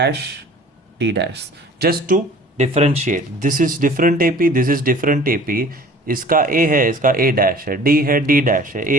d dash, just to differentiate. This is different AP, this is different AP. इसका ए है, इसका ए डैश है, d है, डी डैश है, ए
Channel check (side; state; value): both; normal; correlation 0.47